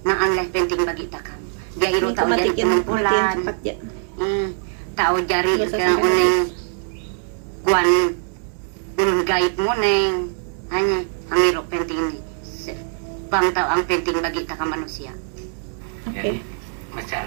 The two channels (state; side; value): silent; left; digital silence